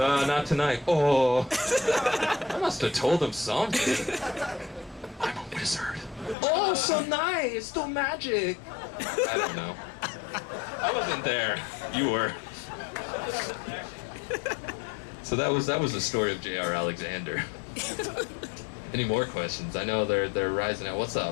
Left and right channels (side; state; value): right; drops out; at 6.4 s